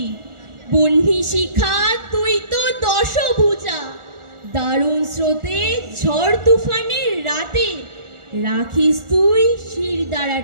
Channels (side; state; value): left; late; 1.4 ms